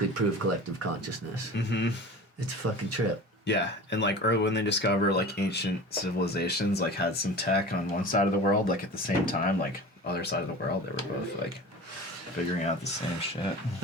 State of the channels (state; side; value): normal; both; correlation 0.36